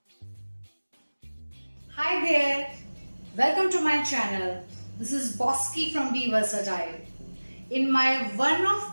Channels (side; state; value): both; inverted; correlation -1.00